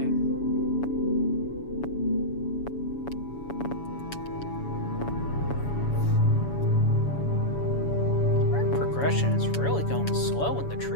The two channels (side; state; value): right; late; 7.1 ms